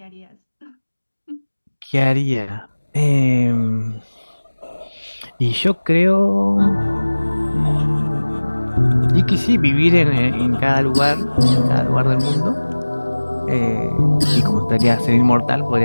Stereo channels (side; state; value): both; inverted; correlation -1.00